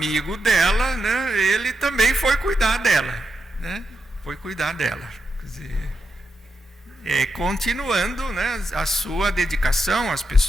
dela, né, ele também foi cuidar dela, né? Foi cuidar dela. Quer dizer, continuando, né, a sua dedicação às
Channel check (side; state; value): both; normal; correlation 0.85